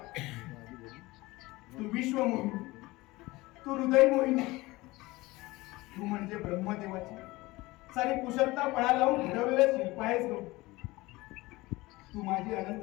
तू विश्व मोहिनी, तू हृदय मोहिनी, तू म्हणजे ब्रह्मदेवाची सारी कुशलता पणा लावून घडवलेलं शिल्प आहेस गो. तू माझी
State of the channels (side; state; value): right; quieter; 20.7 dB